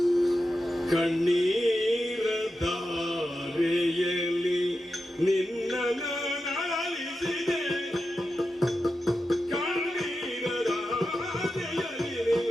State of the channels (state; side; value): normal; both; correlation 0.90